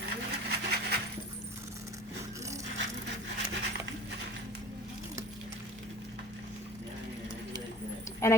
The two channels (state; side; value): normal; both; correlation 0.43